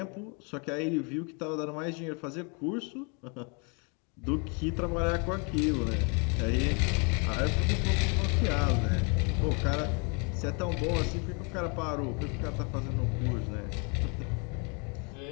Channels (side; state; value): right; quieter; 35.1 dB